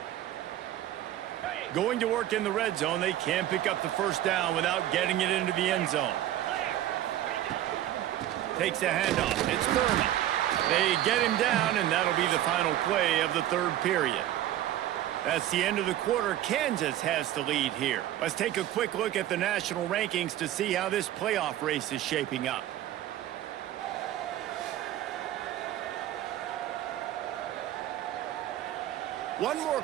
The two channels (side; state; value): left; quieter; 12.8 dB